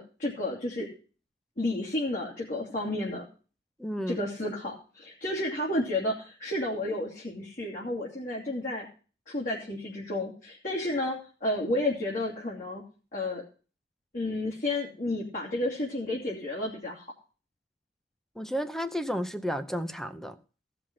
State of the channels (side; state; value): both; normal; correlation 0.44